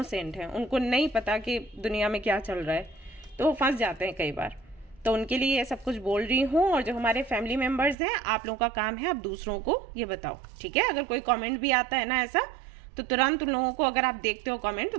हैं, उनको नहीं पता कि दुनिया में क्या चल रहा है, तो वो फंस जाते हैं कई बार। तो उनके लिए ये सब कुछ बोल रही हूँ। और जो हमारे फैमिली मेंबर्स हैं, आप लोगों का काम है आप दूसरों को ये बताओ। ठीक है, अगर कोई कमेंट भी आता है ना ऐसा, तो तुरंत उन लोगों को, अगर आप देखते हो कमेंट, तो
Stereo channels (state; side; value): drops out; left; at 8.0 s